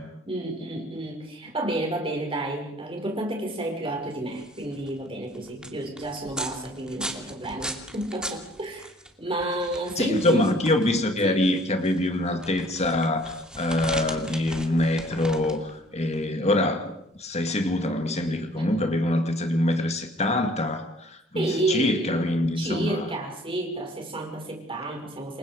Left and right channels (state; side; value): normal; both; correlation 0.55